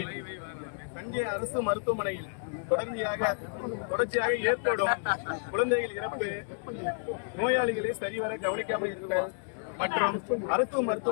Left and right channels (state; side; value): silent; right; digital silence